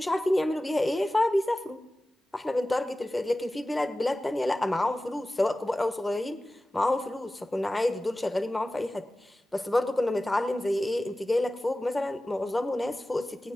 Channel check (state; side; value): normal; both; correlation 0.96